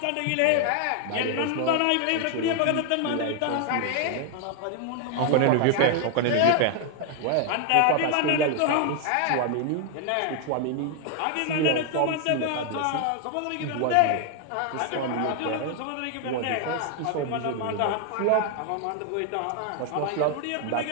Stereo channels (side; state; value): both; different; correlation 0.00